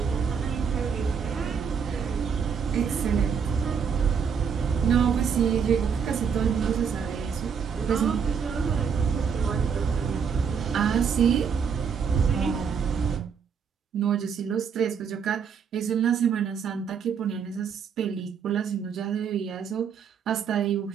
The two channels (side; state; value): left; quieter; 6.7 dB